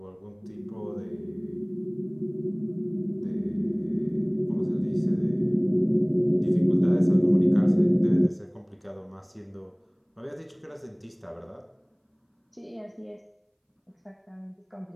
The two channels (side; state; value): both; identical; correlation 1.00